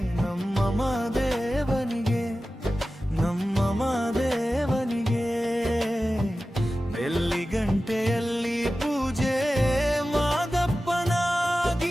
ನಮ್ಮ ಮಾದೇವನಿಗೆ ನಮ್ಮ ಮಾದೇವನಿಗೆ ಬೆಳ್ಳಿ ಗಂಟೆಯಲ್ಲಿ ಪೂಜೆ ಮಾದಪ್ಪನ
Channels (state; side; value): normal; both; correlation 0.95